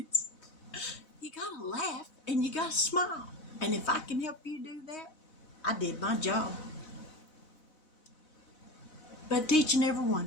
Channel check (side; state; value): right; late; 4.0 ms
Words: you gotta laugh and you gotta smile. And if I can help you do that, I did my job. But to each and every